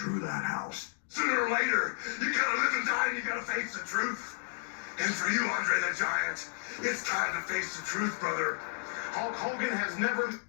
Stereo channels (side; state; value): right; silent; digital silence